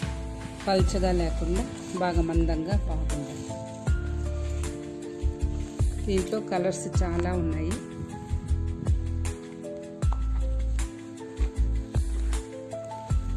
పల్చగా లేకుండా బాగా మందంగా బాగుంది. దీంట్లో కలర్స్ చాలా ఉన్నాయి.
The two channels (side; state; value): both; identical; correlation 1.00